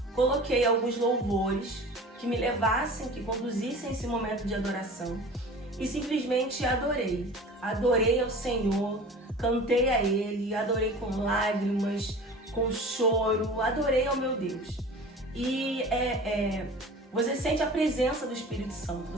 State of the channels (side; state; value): both; normal; correlation 0.39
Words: Coloquei alguns louvores que me levassem, que conduzissem esse momento de adoração e simplesmente adorei. Adorei ao Senhor, cantei a Ele, adorei com lágrimas, com choro, adorei ao meu Deus. E você sente a presença do Espírito Santo,